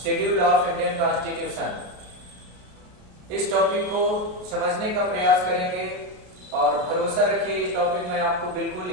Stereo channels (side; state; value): left; late; 33 ms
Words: शेड्यूल ऑफ इंडियन कॉन्स्टिट्यूशन। इस टॉपिक को समझने का प्रयास करेंगे और भरोसा रखिए, इस टॉपिक में आपको बिल्कुल